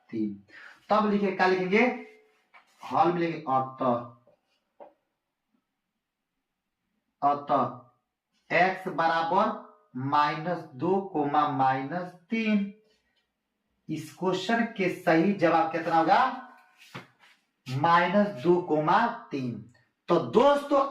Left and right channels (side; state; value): both; identical; correlation 1.00